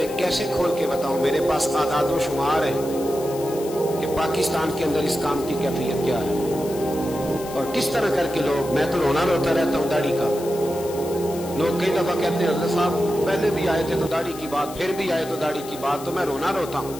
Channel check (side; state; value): left; noise; hiss, 15 dB below the sound